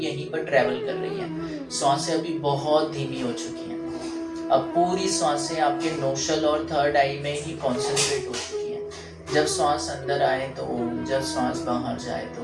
पर ट्रेवल कर रही हैं, सांसें अभी बहुत धीमी हो चुकी हैं। अब पूरी सांसें आपके नोस्ट्रल और थर्ड आई में ही कॉन्सेंट्रेट हो चुकी हैं। जब सांस अंदर आए तो ओम, जब सांस बाहर जाए तो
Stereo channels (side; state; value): both; identical; correlation 1.00